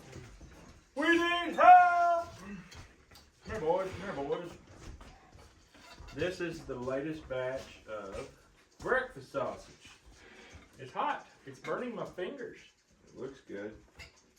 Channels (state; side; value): identical; both; correlation 1.00